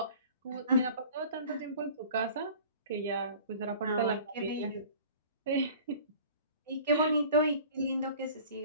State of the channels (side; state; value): both; inverted; correlation -0.46